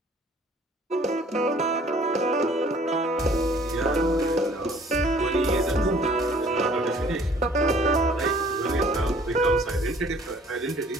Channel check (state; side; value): normal; both; correlation 0.56